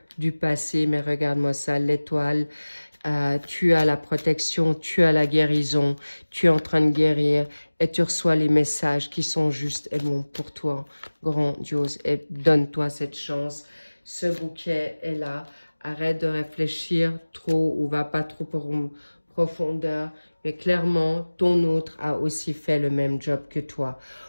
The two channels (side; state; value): both; inverted; correlation -1.00